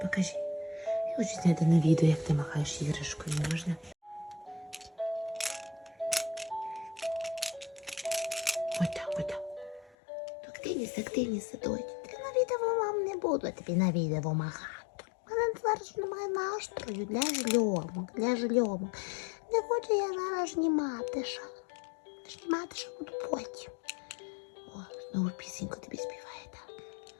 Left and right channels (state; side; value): drops out; right; at 10.0 s